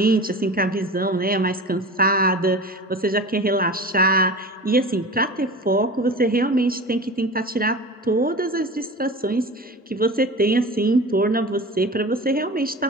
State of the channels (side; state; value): both; normal; correlation 0.34